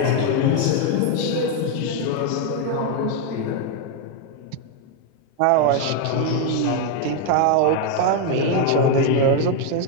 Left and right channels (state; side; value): different; both; correlation 0.01